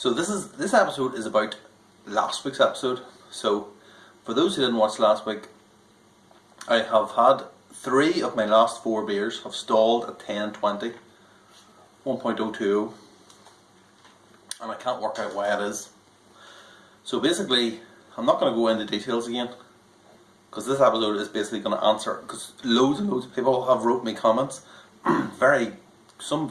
So this episode is about last week's episode. So for those who didn't watch last week, I have had 3 of my last 4 beers have stalled at 10.20, 1.020, and I can't work out why it is. So basically, I'm not going to go into details again, because this episode is basically going to answer, because loads and loads of people have wrote me comments, some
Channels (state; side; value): identical; both; correlation 1.00